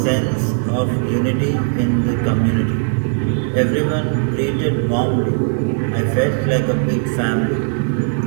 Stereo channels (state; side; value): silent; left; 67 dB below the other